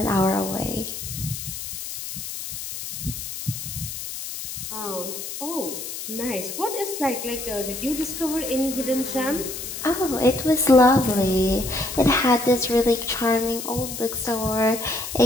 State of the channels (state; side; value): noise; left; hiss, 7 dB below the sound